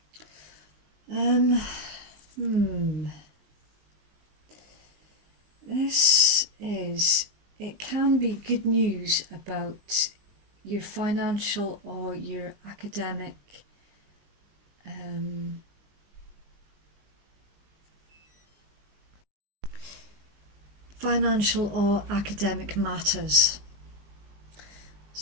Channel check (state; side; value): late; left; 20 ms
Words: It can be good news about your financial or your academic matters.